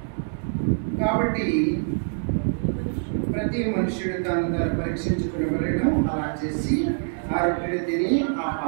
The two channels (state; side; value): silent; left; 62 dB below the other